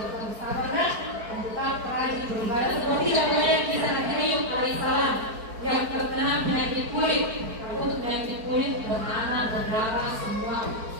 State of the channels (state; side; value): late; left; 4.5 ms